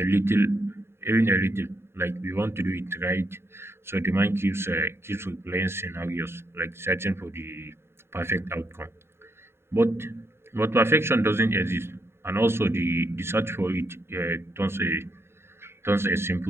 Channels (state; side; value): late; left; 0.12 ms